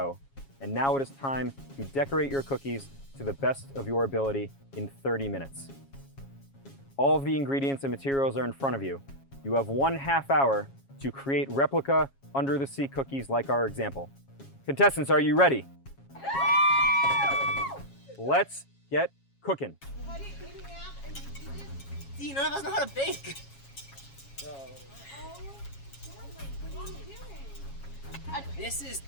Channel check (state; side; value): late; right; 7.3 ms